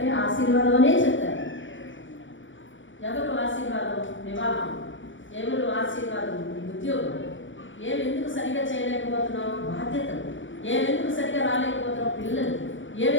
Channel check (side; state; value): right; late; 0.56 ms